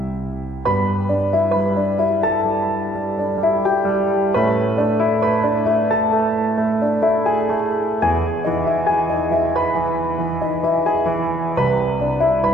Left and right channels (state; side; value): normal; both; correlation 0.67